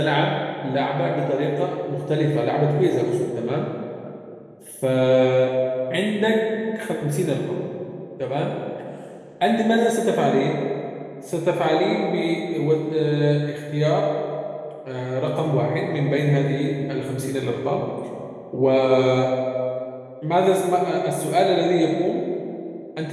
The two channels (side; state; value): both; identical; correlation 1.00